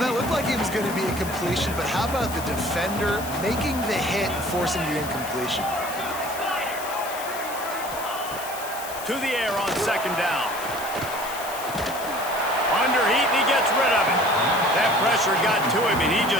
looked like it was going to be a completion, but how about the defender making the hit and forcing the incompletion? To the air on second down. Under heat, and he gets rid of it. That pressure got to him, and he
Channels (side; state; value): left; noise; hiss, 12 dB below the sound